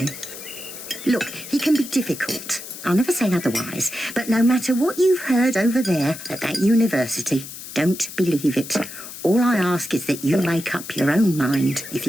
Look, he can be difficult. I'll never say otherwise. But no matter what you've heard over there at that university, don't believe it. All I ask is that you make up your own mind. If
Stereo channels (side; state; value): left; noise; hiss, 12 dB below the sound